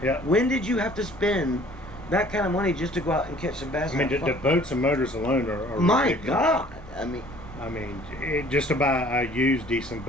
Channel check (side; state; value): left; noise; rumble, 20 dB below the sound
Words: Yeah. When did you have to spend that kind of money just to go out and catch some bass? I mean, and the have fun? boats and motors alone are My ridiculous. God. I mean, Just to buy a used decent